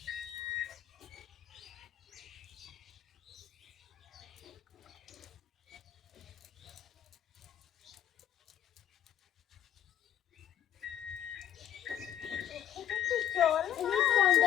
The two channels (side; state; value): right; quieter; 11.1 dB